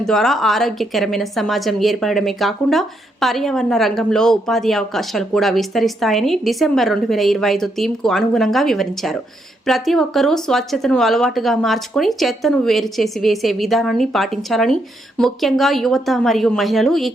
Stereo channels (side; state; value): both; normal; correlation 0.78